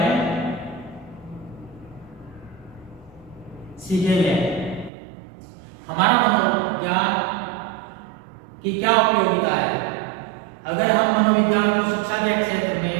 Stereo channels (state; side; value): drops out; left; at 4.9 s